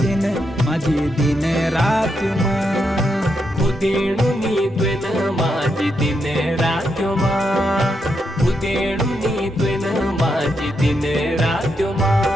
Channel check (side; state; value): both; normal; correlation 0.82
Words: माझी दिन रात्यो माँ। खुदेणुनी त्वेन माझी दिन रात्यो माँ, खुदेणुनी त्वेन माझी दिन रात्यो माँ।